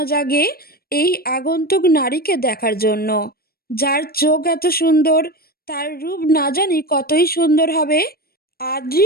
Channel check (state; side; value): late; right; 0.44 ms